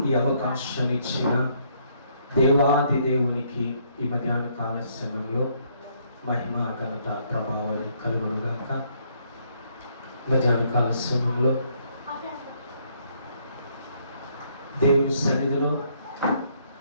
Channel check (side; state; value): both; inverted; correlation -0.69